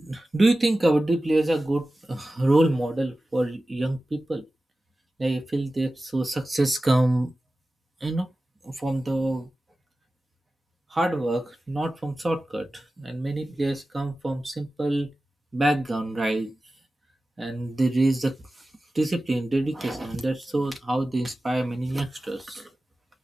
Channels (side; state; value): both; normal; correlation 0.95